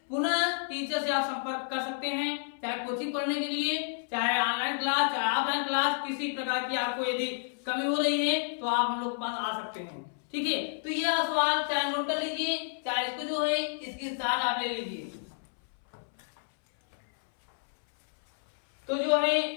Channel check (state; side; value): silent; right; 58 dB below the other